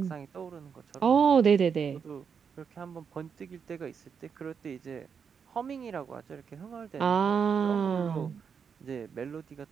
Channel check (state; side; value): quieter; left; 6.6 dB